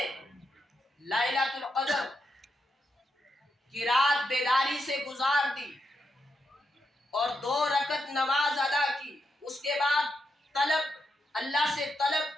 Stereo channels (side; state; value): both; normal; correlation 0.84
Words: لیلۃ القدر کی رات بیداری سے گزار دی اور 2 رکعت نماز ادا کی، اس کے بعد اللہ سے طلب